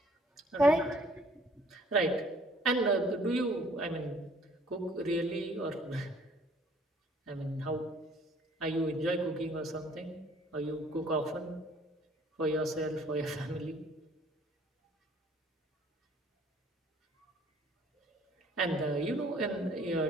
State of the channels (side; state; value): both; normal; correlation 0.58